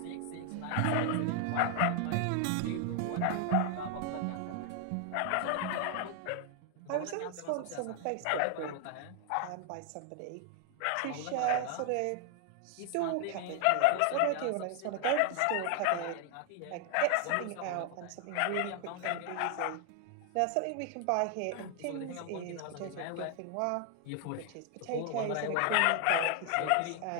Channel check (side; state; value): both; different; correlation 0.00